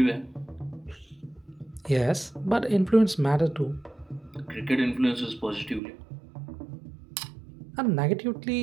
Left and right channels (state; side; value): drops out; left; at 5.8 s